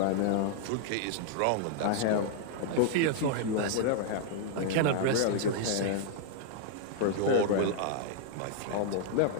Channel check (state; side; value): different; both; correlation -0.01